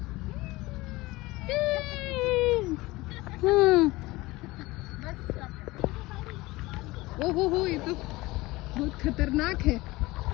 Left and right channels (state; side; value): quieter; right; 20.5 dB